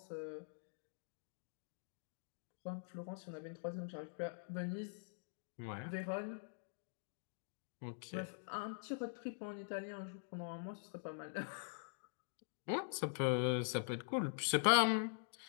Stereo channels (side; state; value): right; silent; digital silence